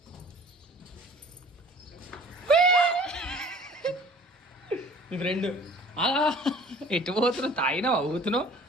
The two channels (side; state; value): both; normal; correlation 0.48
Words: మీ ఫ్రెండ్ ఎటు పోతున్నావు? తాగినావా ఊతున్నావు?